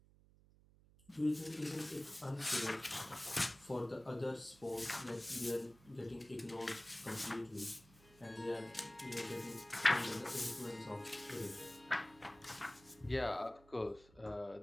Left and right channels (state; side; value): noise; right; hum, 26 dB below the sound